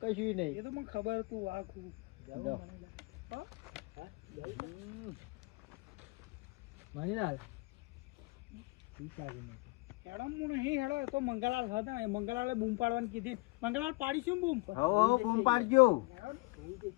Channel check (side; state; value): right; quieter; 25.5 dB